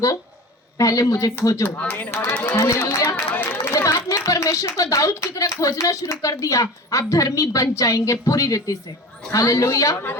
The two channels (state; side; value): normal; both; correlation 0.35